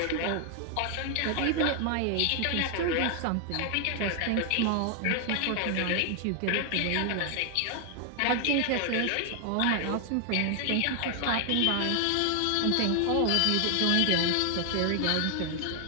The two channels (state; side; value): different; both; correlation 0.00